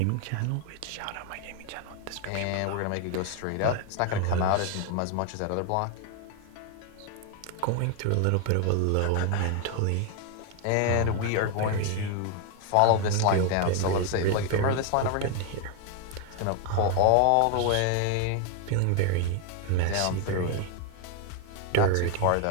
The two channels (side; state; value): both; different; correlation 0.01